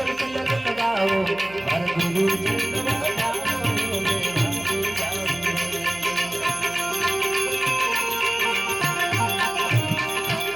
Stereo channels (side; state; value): right; noise; hum, 21 dB below the sound